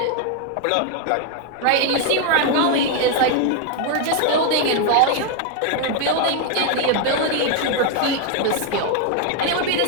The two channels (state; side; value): different; both; correlation 0.01